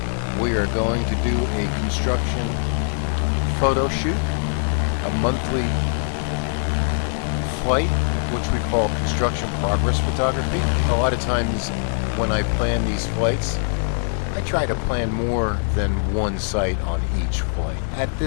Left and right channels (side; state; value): right; silent; 64 dB below the other